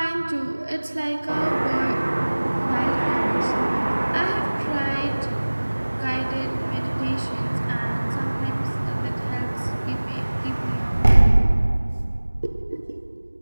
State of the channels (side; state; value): both; inverted; correlation -1.00